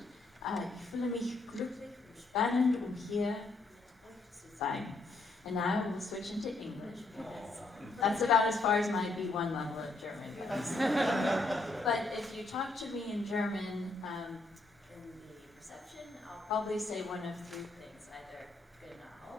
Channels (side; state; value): right; quieter; 3.2 dB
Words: Ich fühle mich glücklich und spannend, hier mit euch zu sein. And now we'll switch into English because that's about as far as my B1 level of German goes. But if you talk to me in German in the reception, I'll probably say one of 3 things, either